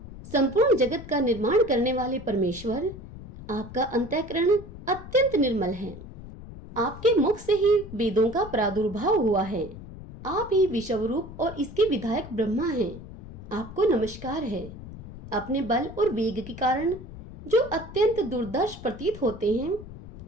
संपूर्ण जगत का निर्माण करने वाले परमेश्वर, आपका अंतःकरण अत्यंत निर्मल है। आपके मुख से ही वेदों का प्रादुर्भाव हुआ है। आप ही विश्वरूप और इसके विधायक ब्रह्मा हैं। आपको नमस्कार है। अपने बल और वेग के कारण जो अत्यंत दुर्दर्श प्रतीत होते हैं,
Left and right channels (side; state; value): left; noise; rumble, 14 dB below the sound